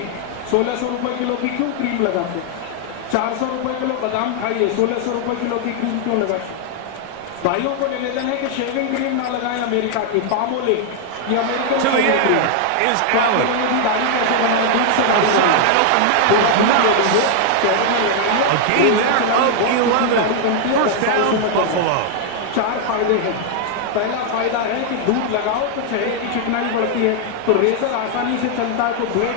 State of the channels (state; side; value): different; both; correlation 0.00